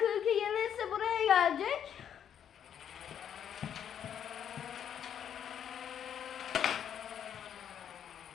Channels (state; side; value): quieter; right; 9.0 dB